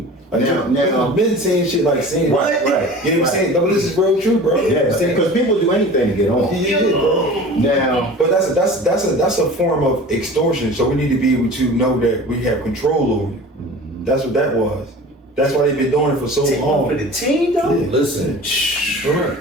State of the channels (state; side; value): normal; both; correlation 0.39